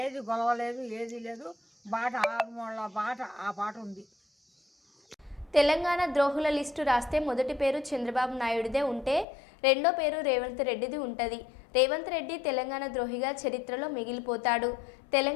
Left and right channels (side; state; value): right; drops out; at 9.2 s